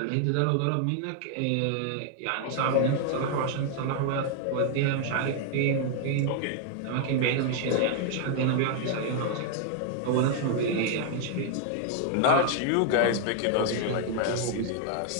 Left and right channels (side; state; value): both; different; correlation 0.00